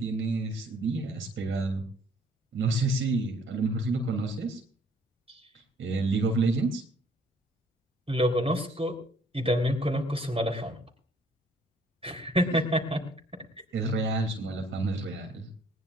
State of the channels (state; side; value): normal; both; correlation 0.61